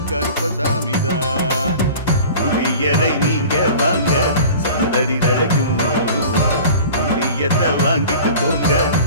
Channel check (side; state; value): both; inverted; correlation -0.40